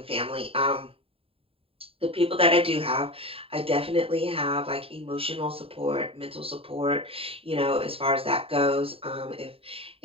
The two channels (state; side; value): late; left; 0.27 ms